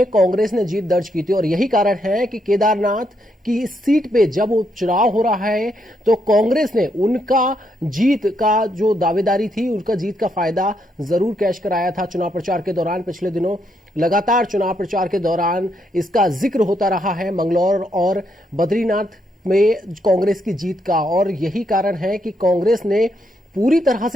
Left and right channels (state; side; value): normal; both; correlation 0.77